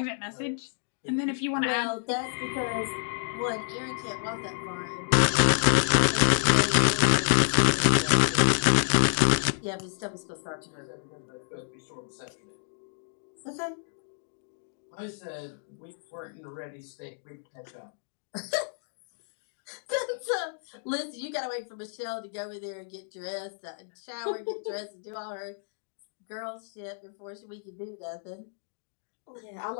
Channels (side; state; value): right; silent; digital silence